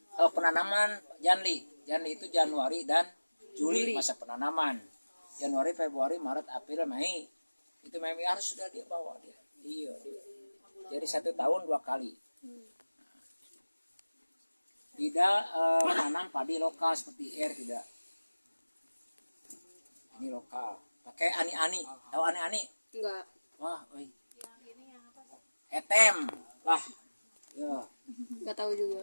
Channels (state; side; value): inverted; both; correlation -1.00